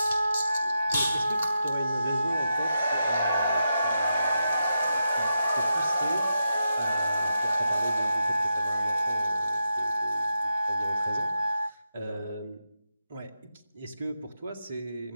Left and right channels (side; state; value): both; inverted; correlation -0.86